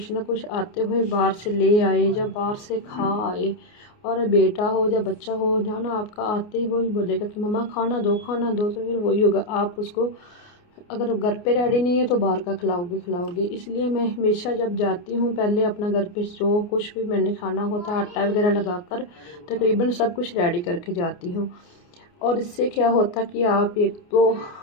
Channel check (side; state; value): right; late; 29 ms